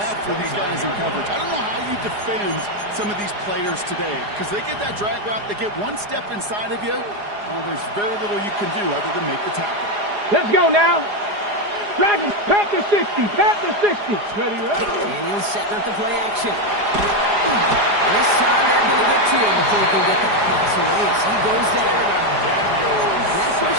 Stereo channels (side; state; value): left; late; 4.9 ms